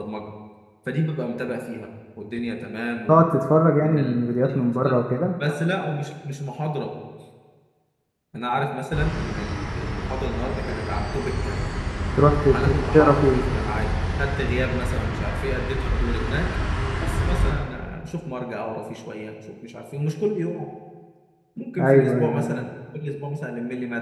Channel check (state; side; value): identical; both; correlation 1.00